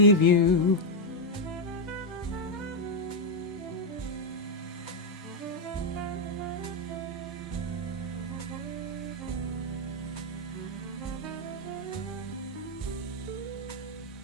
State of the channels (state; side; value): normal; both; correlation 0.01